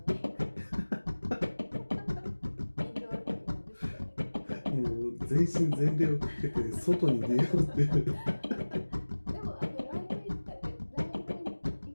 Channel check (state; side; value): inverted; both; correlation -1.00